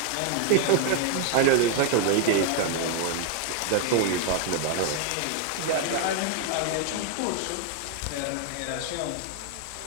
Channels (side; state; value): both; different; correlation 0.00